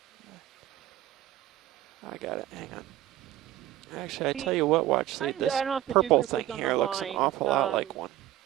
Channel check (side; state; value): left; quieter; 13.7 dB